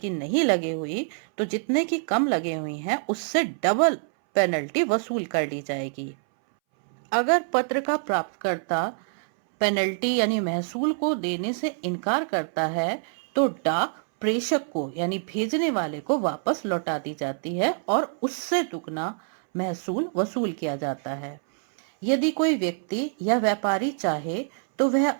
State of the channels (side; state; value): left; silent; 61 dB below the other